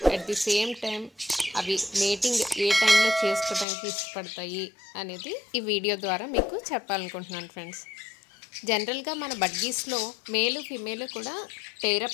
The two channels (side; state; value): right; drops out; at 3.7 s